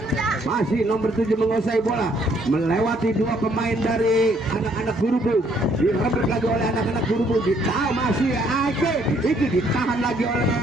Masih nomor 7 menguasai bola, melewati dua pemain dari anak-anak Gerubuk, direbut lagi oleh anak-anak Gerubuk. Ditahan masih Iki, ditahan lagi oleh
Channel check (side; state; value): both; normal; correlation 0.67